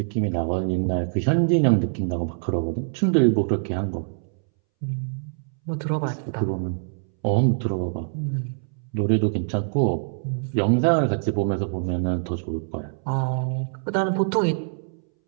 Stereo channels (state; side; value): silent; left; 62 dB below the other